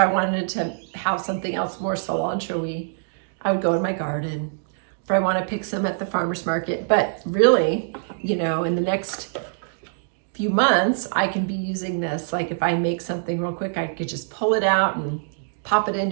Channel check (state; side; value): silent; left; digital silence